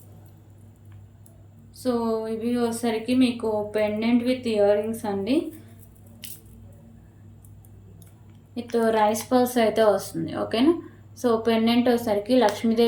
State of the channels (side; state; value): both; identical; correlation 1.00